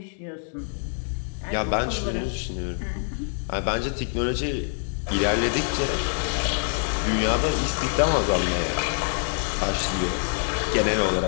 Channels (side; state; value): right; silent; 58 dB below the other